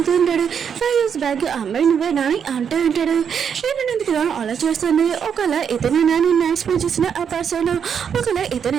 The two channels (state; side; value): quieter; left; 7.5 dB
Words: ఉంటాడు 5 years బ్యాక్ అమ్మాయి నువ్వేనా అని అంటూ ఉంటాడు. హీరోని కదా అలా చేస్తుంది. ఒకవేళ ఇతనే నేను ఎక్స్ప్లెయిన్ చేసిన ఆ పర్సన్, ఒకవేళ